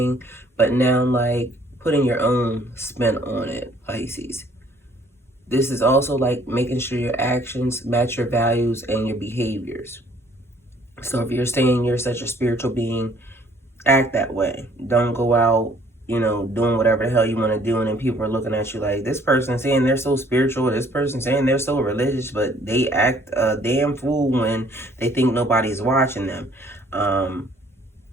but now like putting your own spin on it, Pisces. This is also like making sure your actions match your values and your behaviors. So if you're saying you're such a spiritual being, act that way. Don't go out, doing whatever the hell you want to do, and then people are looking at you like, this person saying they're so spiritual, this person saying they're so religious, but they act a damn fool when they think nobody's watching them.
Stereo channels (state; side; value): normal; both; correlation 0.60